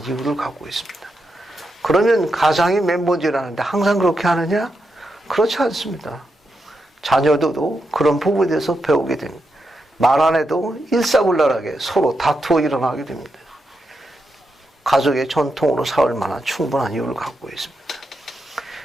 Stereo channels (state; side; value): normal; both; correlation 0.85